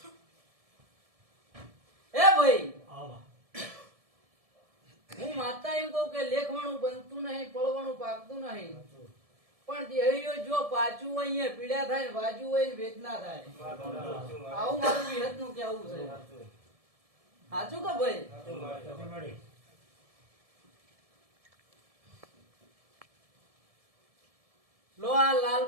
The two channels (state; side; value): late; left; 1.7 ms